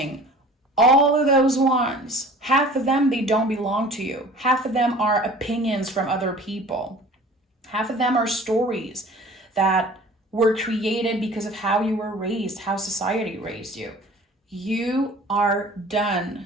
all of those wands. Half of them, they don't belong to you. Half of them are opinions from other people. Half of them are stories that were created because of how you were raised, how society raised you. You are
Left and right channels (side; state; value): both; normal; correlation 0.45